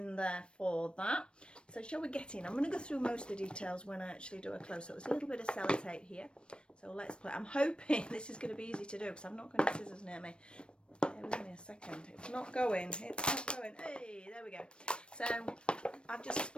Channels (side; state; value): right; late; 0.057 ms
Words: there for that. So shall we get in? I'm going to go through most of the details when I actually do a close-up. There's a little bit of sellotape here. So let's play. I'm hoping this is going to be easy to do because I've not got any scissors near me. Bear with me a second. It's not going. It's not going. Hey, there we go. So I've just